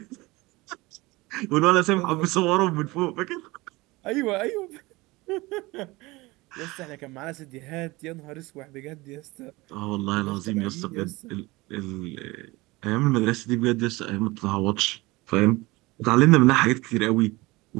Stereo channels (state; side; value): quieter; left; 21.9 dB